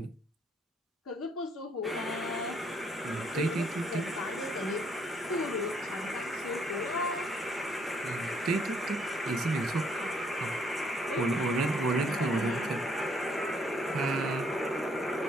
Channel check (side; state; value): both; normal; correlation 0.67